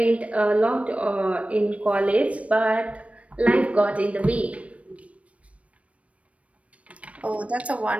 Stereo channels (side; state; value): left; late; 0.064 ms